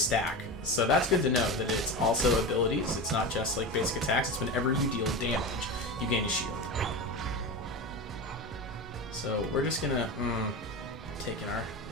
So that's good to know, that it's also abilities. It's not just like basic attacks. It's whenever you deal damage, you gain a shield. So we're just going to... taking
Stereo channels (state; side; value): normal; both; correlation 0.24